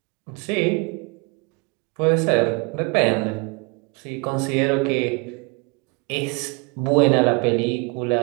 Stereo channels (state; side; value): quieter; left; 30.4 dB